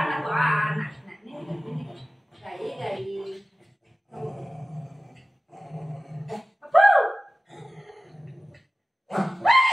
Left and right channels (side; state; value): both; normal; correlation 0.96